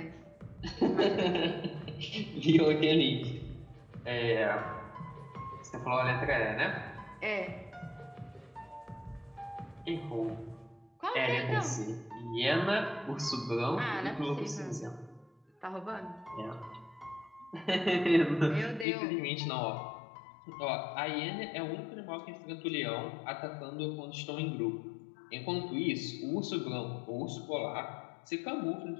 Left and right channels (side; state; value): right; drops out; at 18.9 s